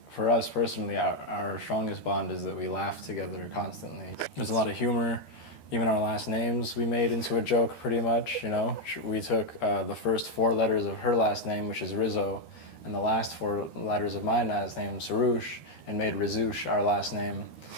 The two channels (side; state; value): right; late; 13 ms